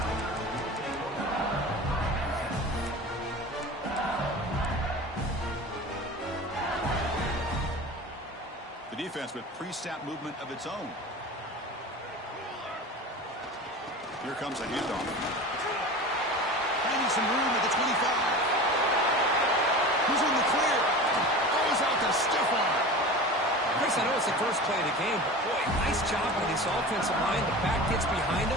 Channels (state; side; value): normal; both; correlation 0.34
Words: The defense with pre-snap movement of its own. Here comes a handoff. Finding some room at the 25. Who's in the clear? Goes out to stiff arm. Chris, I know it's the first play of the game, but boy, nice job by this offensive line. The back gets behind him,